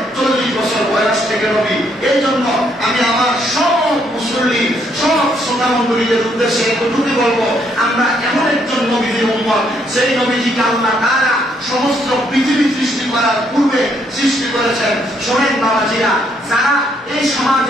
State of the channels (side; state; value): both; normal; correlation 0.71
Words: 40 বছর বয়স থেকে নবী। এই জন্য আমি আমার সব মুসল্লি, সব শ্রোতা মণ্ডলীদের উদ্দেশ্যে এতটুকু বলবো, আমরা এমন একজন নবীদের উম্মত, সেই নবীজিকে আল্লাহ তাআলা সমস্ত পৃথিবী সৃষ্টি করার পূর্বে সৃষ্টি করেছেন। শোনেন বাবাজিরা, যারা এই